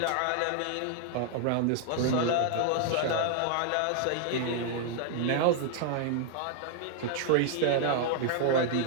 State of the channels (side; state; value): both; different; correlation -0.01